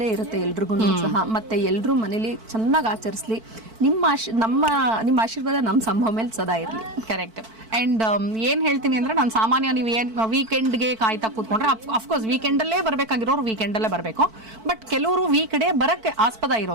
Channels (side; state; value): left; late; 4.5 ms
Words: ಇರುತ್ತೆ ಎಲ್ರಿಗೂ ಸಹ. ಮತ್ತೆ ಎಲ್ರು ಮನೇಲಿ ಚೆನ್ನಾಗಿ ಆಚರಿಸ್ಲಿ. ನಿಮ್ಮ ಆಶೀರ್ವಾದ ನಮ್ಮ ಸಂಭವ ಮೇಲೆ ಸದಾ ಇರಲಿ. ಕರೆಕ್ಟ್. ಅಂಡ್ ಏನ್ ಹೇಳ್ತೀನಿ ಅಂದ್ರೆ, ನಾನು ಸಾಮಾನ್ಯ ನೀವು ಏನ್ ವೀಕೆಂಡ್ಗೆ ಕಾಯ್ತಾ ಕೂತ್ಕೊಂಡ್ರೆ, ಅಫ್ಕೋರ್ಸ್ ವೀಕೆಂಡಲ್ಲೇ ಬರ್ಬೇಕಾಗಿರೋರು ವೀಕೆಂಡಲ್ಲೇ ಬರಬೇಕು. ಬಟ್ ಕೆಲವರು ವೀಕ್ ಡೇ ಬರಕ್ಕೆ ಆಸ್ಪದ